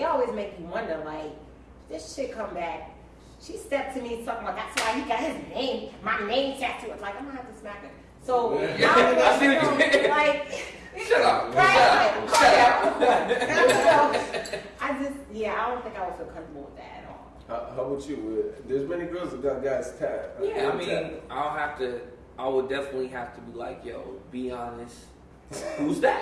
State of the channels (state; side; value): identical; both; correlation 1.00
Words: always make you wonder, like, this shit come back. She stepped to me talking about that's why he got his name, my name tattooed. I'm like, I'm gonna have to smack her. So I see what you mean. like, shut up. right? Shut up. I don't think I would feel comfortable with that at all. How about you? There's many girls that got guys tattooed. Yeah, I mean, I would definitely have to be like, yo, be honest. Who's